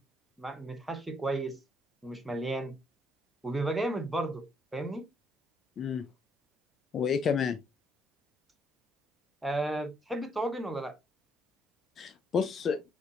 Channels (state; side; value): normal; both; correlation 0.71